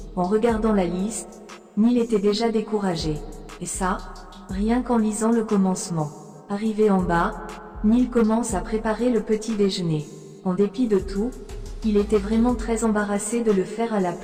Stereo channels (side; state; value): both; identical; correlation 1.00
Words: En regardant la liste, Neil était déjà découragé. Et ça, rien qu'en lisant le commencement. Arrivé en bas, Neil commence à préparer le petit déjeuner. En dépit de tout, il était vraiment très embarrassé de le faire à la